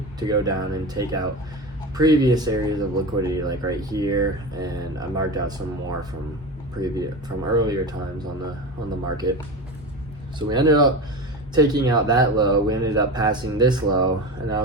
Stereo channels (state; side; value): normal; both; correlation 0.25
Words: to go down and take out previous areas of liquidity, like right here, and I marked out some more from earlier times on the market. So we ended up taking out that low. We ended up passing this low, and I